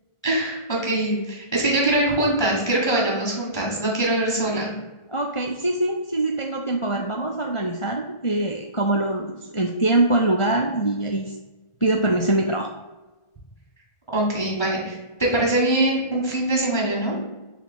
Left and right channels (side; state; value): right; late; 1.3 ms